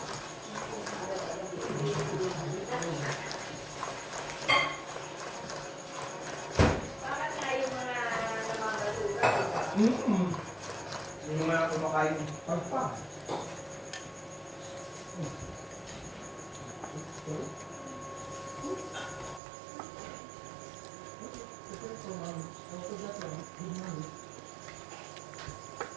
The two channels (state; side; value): drops out; left; at 19.4 s